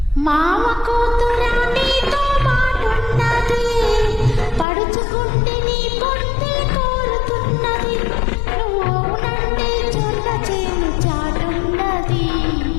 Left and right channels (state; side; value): drops out; right; at 4.7 s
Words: మామ కూతురా నీతో మాటున్నది, పడుచుకుంటే నీ పొట్టే కోరుతున్నది. నువ్వు అవునంటే చొల్ల చేను చాటున్నది,